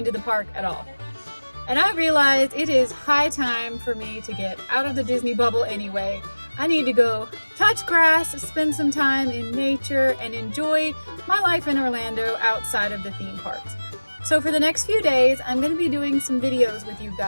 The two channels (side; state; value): both; inverted; correlation -1.00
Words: the park at all. And I realized it is high time for me to get out of the Disney bubble anyway. I need to go touch grass, spend some time in nature, and enjoy my life in Orlando outside of the theme parks. So for the next few days, I'm going to be doing some videos with you